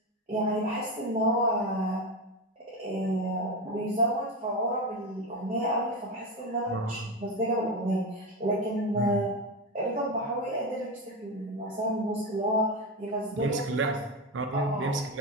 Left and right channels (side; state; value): both; normal; correlation 0.17